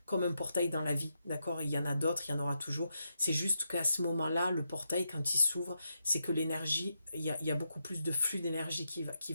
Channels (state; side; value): inverted; both; correlation -0.84